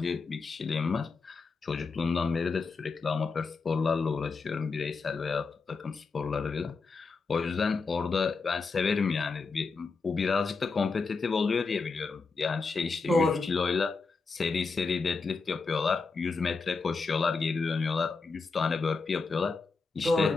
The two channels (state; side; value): quieter; right; 4.4 dB